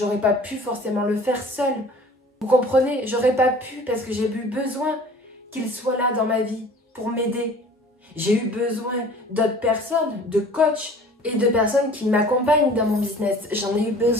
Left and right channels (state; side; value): normal; both; correlation 0.47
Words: pas pu forcément le faire seule. Vous comprenez? J'aurais pas pu parce que j'ai eu besoin qu'il soit là dans ma vie pour m'aider. J'ai eu besoin d'autres personnes, de coachs et de personnes qui m'accompagnent dans mon business. J'en ai eu